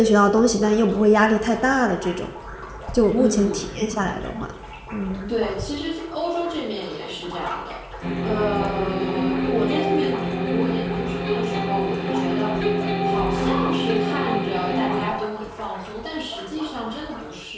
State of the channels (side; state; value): both; identical; correlation 1.00